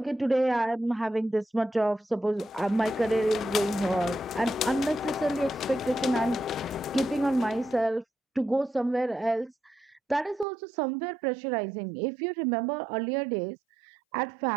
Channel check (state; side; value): drops out; left; at 10.5 s